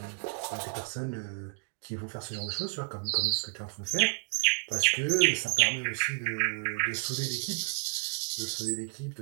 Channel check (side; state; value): left; quieter; 39.6 dB